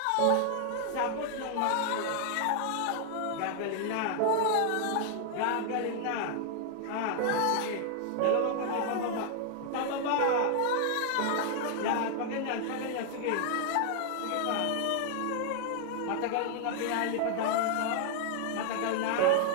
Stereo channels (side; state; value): both; different; correlation 0.00